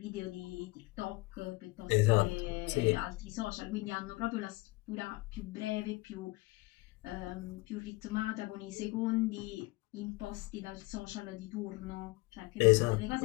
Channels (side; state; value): right; quieter; 22.2 dB